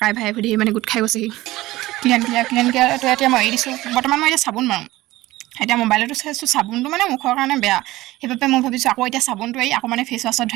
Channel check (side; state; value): left; quieter; 17.8 dB